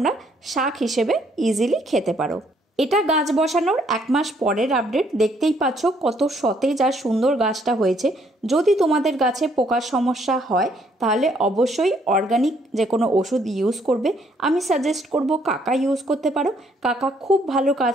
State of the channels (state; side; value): normal; both; correlation 0.68